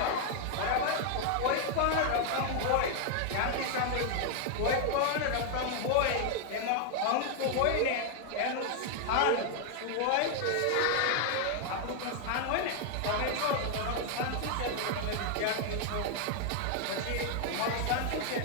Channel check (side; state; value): both; different; correlation 0.00